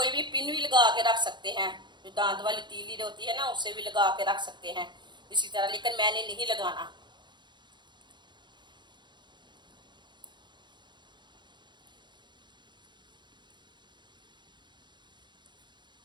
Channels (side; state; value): left; late; 0.22 ms